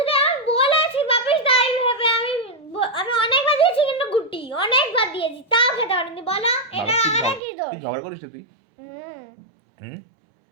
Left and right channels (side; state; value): left; drops out; at 7.4 s